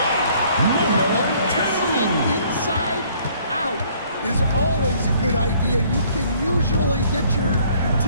Testing inside out is always a good idea. You can usually get your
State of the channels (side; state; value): both; inverted; correlation -0.60